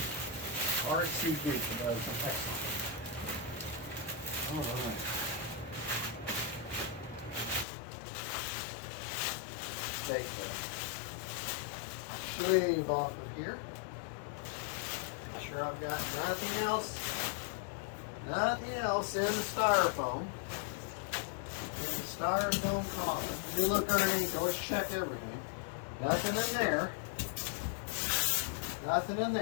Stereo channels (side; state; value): right; drops out; at 7.7 s